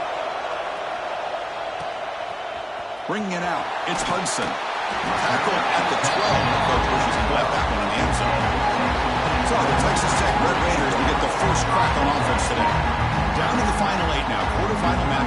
Bringing it out, it's Hudson. Tackle at the 12. The coach wishes he left that one in the end zone. So the Texas Tech Red Raiders will get the first crack on offense today. Down to the final 8 now. Quarterfinal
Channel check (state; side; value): identical; both; correlation 1.00